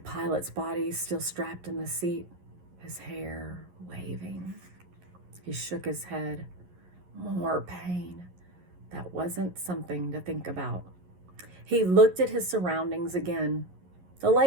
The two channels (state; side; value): late; left; 11 ms